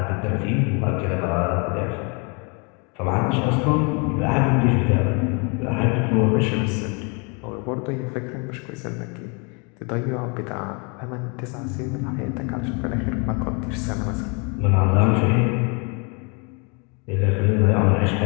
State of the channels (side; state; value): right; quieter; 33.4 dB